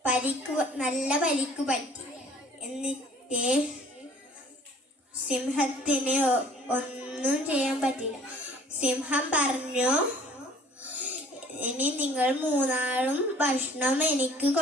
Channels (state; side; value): normal; both; correlation 0.53